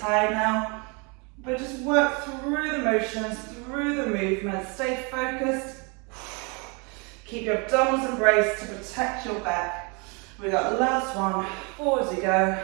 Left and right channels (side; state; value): left; quieter; 31.7 dB